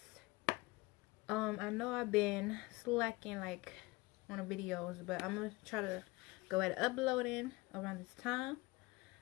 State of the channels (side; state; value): right; quieter; 22.7 dB